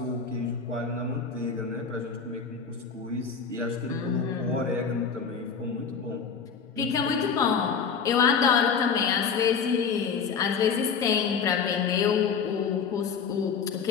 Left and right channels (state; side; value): quieter; right; 6.1 dB